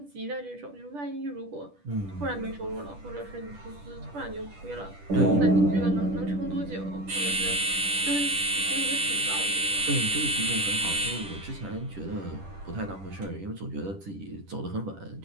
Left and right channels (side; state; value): left; late; 10 ms